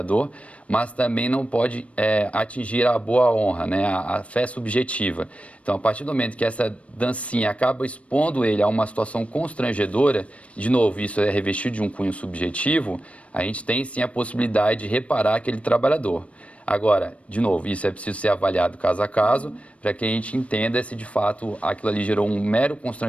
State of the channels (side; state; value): right; late; 0.063 ms